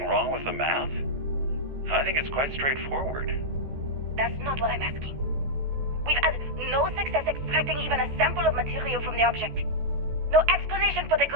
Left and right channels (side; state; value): left; late; 14 ms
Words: wrong with the math? I think it's quite straightforward. That's not what I'm asking. We've had no success extracting even a sample of material from the object. No explanation for the